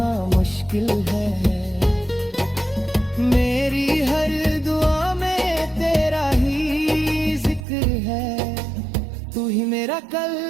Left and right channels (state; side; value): drops out; left; at 7.6 s